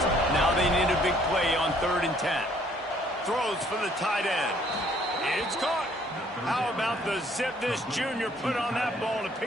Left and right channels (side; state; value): both; normal; correlation 0.62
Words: now they need a big play on 3rd and 10. Throws for the tight end. It's caught. How about the zip this junior put on that ball to